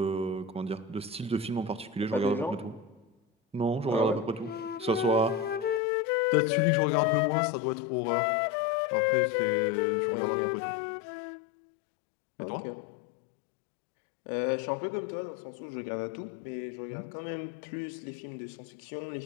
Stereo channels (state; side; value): drops out; right; at 5.8 s